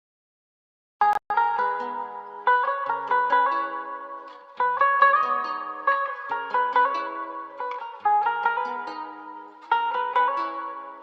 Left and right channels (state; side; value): identical; both; correlation 1.00